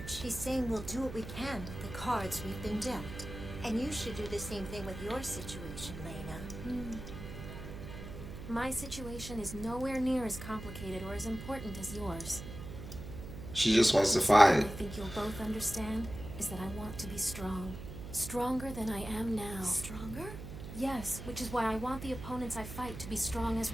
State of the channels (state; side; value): noise; right; hum, 10 dB below the sound